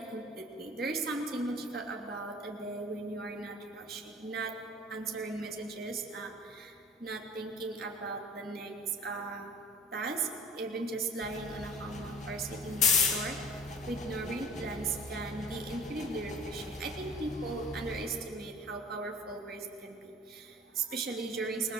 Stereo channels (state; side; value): normal; both; correlation 0.46